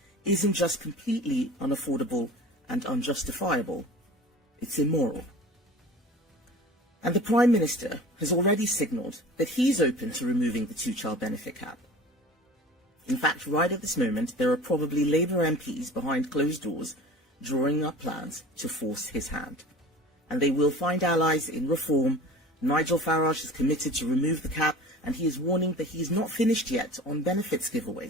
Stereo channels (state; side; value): normal; both; correlation 0.40